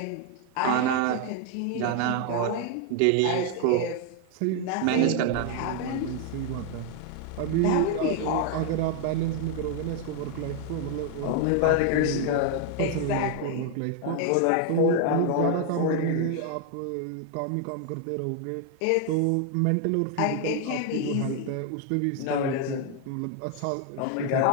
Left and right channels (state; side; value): different; both; correlation 0.00